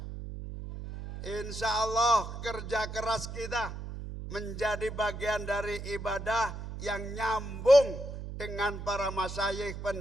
Insya Allah kerja keras kita menjadi bagian dari ibadah yang nyambung dengan para masyayikh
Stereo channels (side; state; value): right; noise; hum, 8 dB below the sound